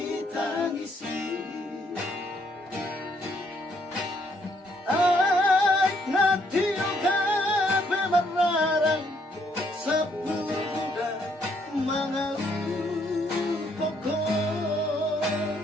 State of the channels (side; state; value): both; normal; correlation 0.70